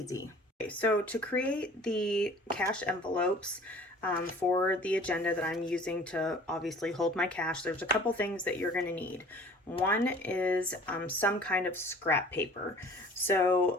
Okay, so to create the cash envelopes for the agenda that I'm using to obviously hold my cash, there's a couple things that you're going to need. One is some kind of scrap paper,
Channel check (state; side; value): normal; both; correlation 0.48